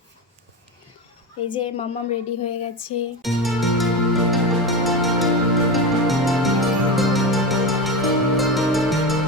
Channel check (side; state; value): both; normal; correlation 0.21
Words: এই যে মাম্মাম রেডি হয়ে গেছে।